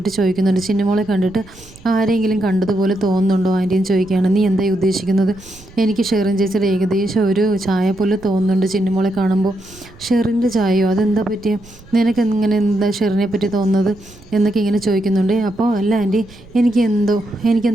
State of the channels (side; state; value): right; noise; rumble, 23 dB below the sound